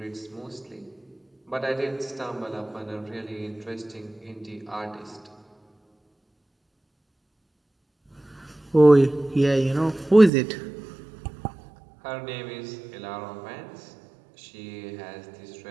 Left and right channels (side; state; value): left; drops out; at 10.3 s